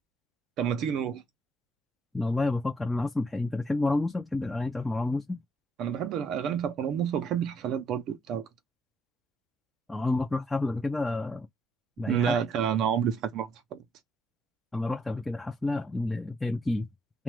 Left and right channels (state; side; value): normal; both; correlation 0.71